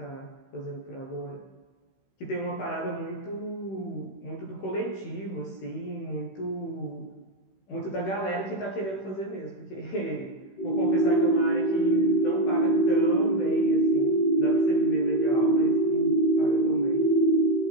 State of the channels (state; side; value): late; right; 16 ms